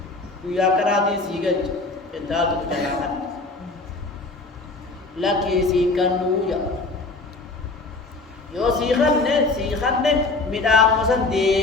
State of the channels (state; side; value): quieter; right; 3.4 dB